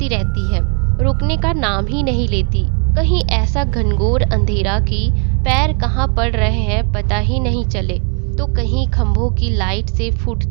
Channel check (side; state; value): left; quieter; 34.5 dB